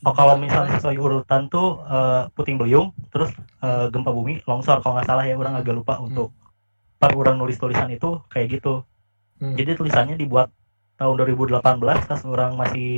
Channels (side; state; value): both; inverted; correlation -1.00